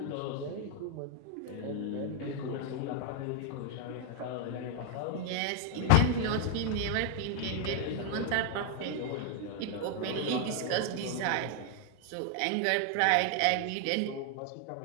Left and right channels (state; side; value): different; both; correlation 0.00